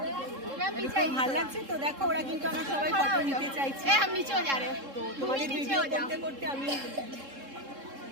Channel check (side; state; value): left; late; 3.7 ms